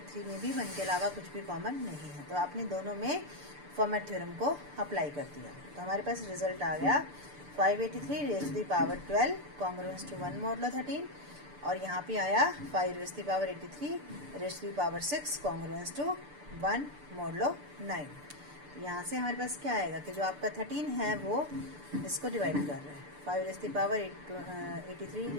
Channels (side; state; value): left; late; 6.8 ms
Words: में भी 1 के अलावा कुछ भी कॉमन नहीं है. तो आपने दोनों में फॉर्मेट थ्योरम को अप्लाई कर दिया. तो हमारे पास रिजल्ट आ गया 583 raise to the power 12 congruence to 1 modulo 13, और यहाँ पे आया 5 raise to the power 83 raise to the power 6 congruence to 1 modulo 9. यहाँ से हमारे पास क्या आएगा कि जो आपका 13 है वो इसको डिवाइड कर रहा है 5 raise to the power 83